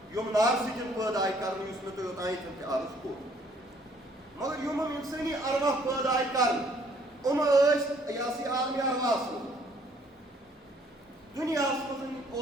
یِم نارٕ سۭتۍ پٲدٕ آیہِ کَرنہٕ یُس مےٚ تۄہہِ اوٚتانۍ تہِ عرض کوٚر مگر یِم اِنسٲنی ارواح پٲدٕ آیہِ کَرنہٕ یِم ٲسۍ یہِ ہسا یہِ عالمِ ارواحس منٛز دُنیاہس منٛز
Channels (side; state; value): both; normal; correlation 0.63